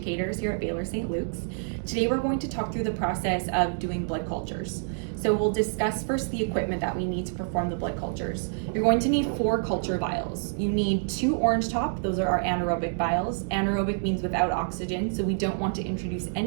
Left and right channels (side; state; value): left; silent; digital silence